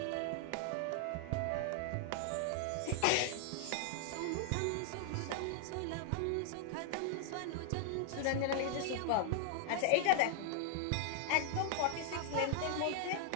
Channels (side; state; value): both; different; correlation 0.00